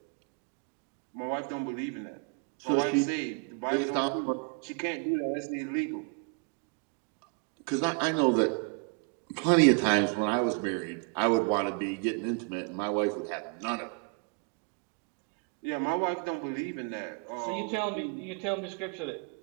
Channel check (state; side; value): quieter; left; 36.8 dB